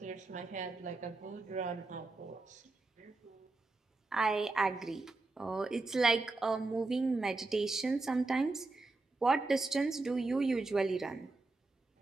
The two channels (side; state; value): left; quieter; 3.3 dB